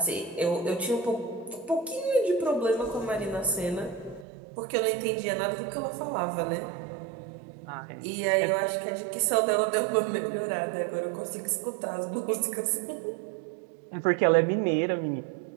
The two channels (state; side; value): drops out; left; at 4.2 s